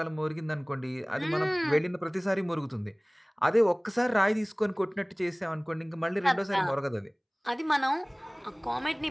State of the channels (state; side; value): identical; both; correlation 1.00